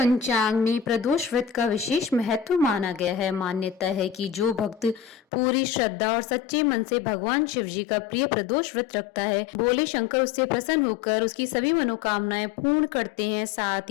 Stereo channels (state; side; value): drops out; right; at 5.2 s